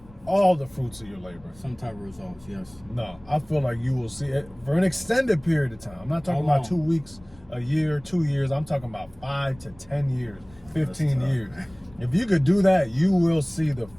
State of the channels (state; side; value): noise; left; rumble, 24 dB below the sound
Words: all the fruits of your labor. Some type of results, yes. No, I feel like you will see it for an extended period of time. I'm not talking How about long? 2 weeks, a year, 2 years. I'm talking about 5 to 10 years, 15 tough, years. man. If you could do that, you will see the